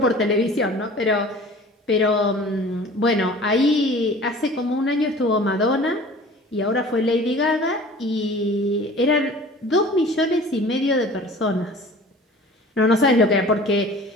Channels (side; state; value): both; normal; correlation 0.44